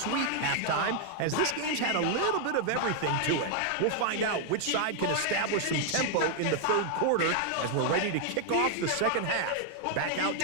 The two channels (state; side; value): different; both; correlation 0.00